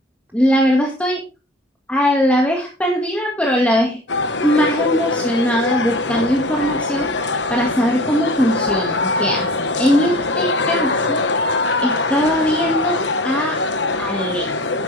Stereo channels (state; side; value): normal; both; correlation 0.41